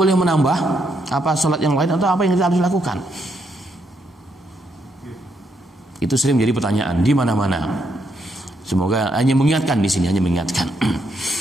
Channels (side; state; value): both; normal; correlation 0.77